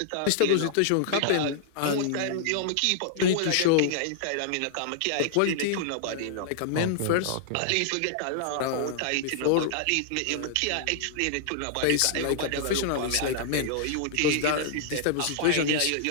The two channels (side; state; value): both; different; correlation -0.01